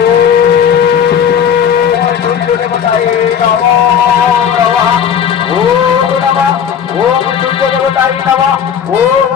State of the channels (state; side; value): quieter; right; 8.1 dB